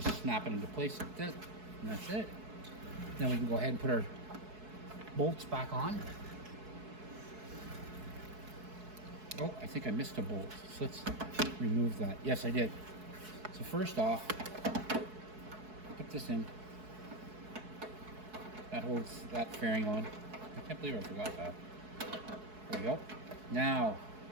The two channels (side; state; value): left; late; 4.6 ms